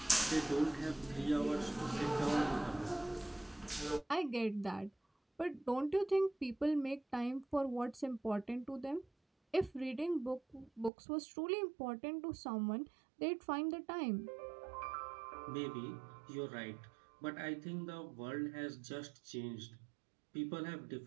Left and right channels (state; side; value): drops out; left; at 10.9 s